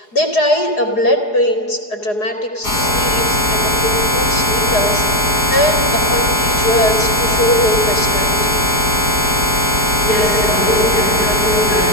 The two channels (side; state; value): right; late; 4.8 ms